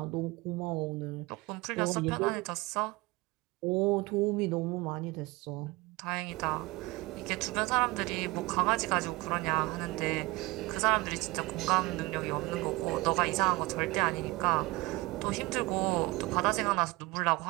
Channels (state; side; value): quieter; left; 22.0 dB